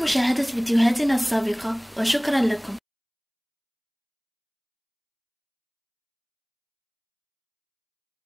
مشاهدة فيديوهاتنا السابقة، وشكرا لكم.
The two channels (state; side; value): identical; both; correlation 1.00